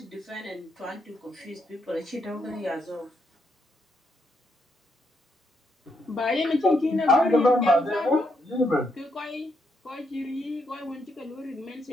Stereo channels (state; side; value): normal; both; correlation 0.78